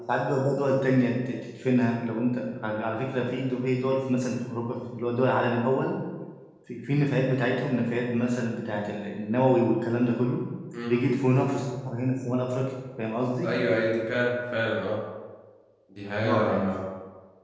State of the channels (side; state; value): both; identical; correlation 1.00